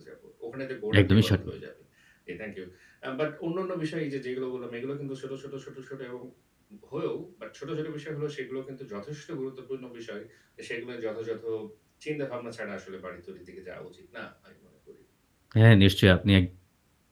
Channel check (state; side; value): identical; both; correlation 1.00